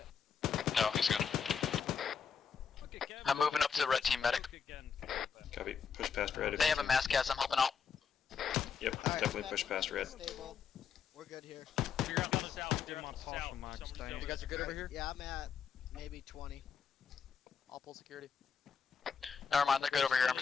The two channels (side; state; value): right; quieter; 6.6 dB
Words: no, he's good. I'm moving up to the red team medic. Copy. Push past red. if They you have a can. mass cast, I'm helping out. Yep, definitely push past red. We're good here. Figure out on the south, do my partial max. You guys are good over here? Yeah, I'm at maybe 20. I'll pull security. Never mind, they're good over here. I'm